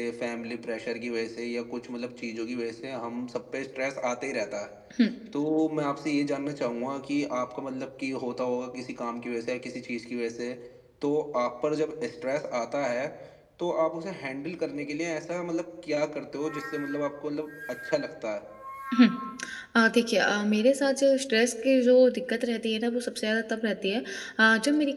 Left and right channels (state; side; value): identical; both; correlation 1.00